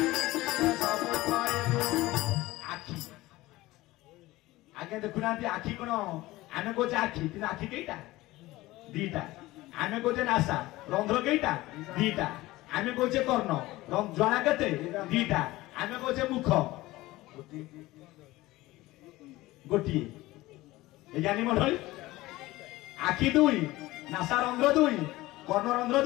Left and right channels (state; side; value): quieter; right; 18.5 dB